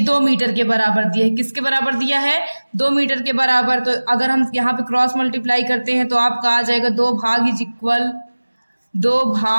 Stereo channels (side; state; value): both; inverted; correlation -1.00